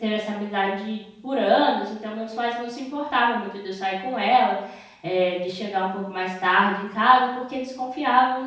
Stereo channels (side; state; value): both; identical; correlation 1.00